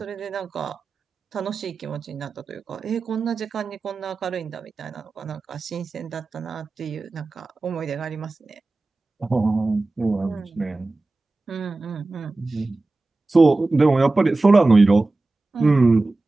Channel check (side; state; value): left; quieter; 3.2 dB